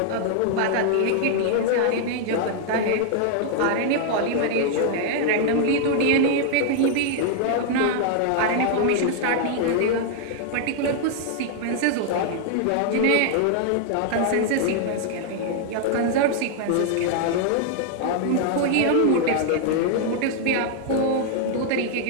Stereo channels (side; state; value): both; different; correlation 0.00